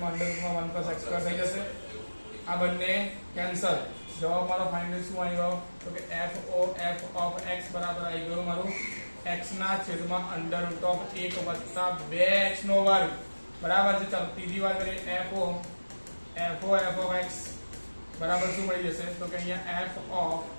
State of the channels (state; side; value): inverted; both; correlation -1.00